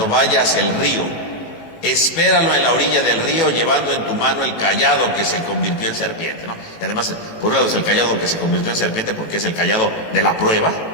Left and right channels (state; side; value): late; right; 19 ms